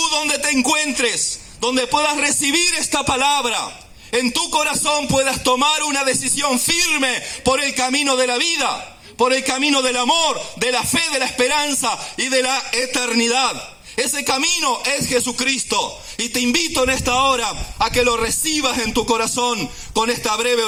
donde te encuentres, donde puedas recibir esta palabra, en tu corazón puedas tomar una decisión firme por el camino de la vida, por el camino del amor, de la fe, de la esperanza y de la eternidad. Ese camino es Jesucristo. Y te invito en esta hora a que lo recibas en tu corazón con esta breve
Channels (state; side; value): identical; both; correlation 1.00